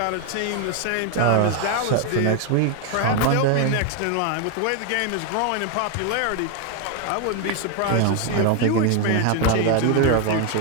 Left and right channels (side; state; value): both; different; correlation 0.01